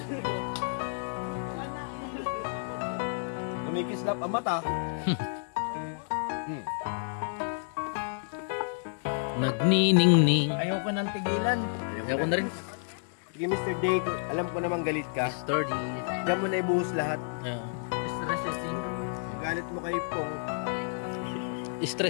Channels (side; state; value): right; silent; digital silence